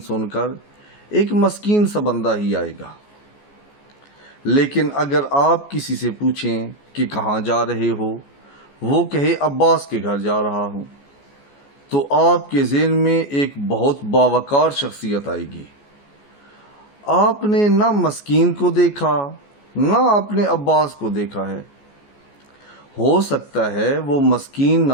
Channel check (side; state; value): right; late; 14 ms